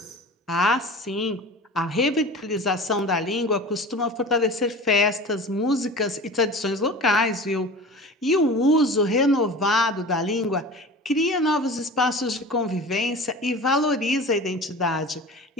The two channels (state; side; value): normal; both; correlation 0.37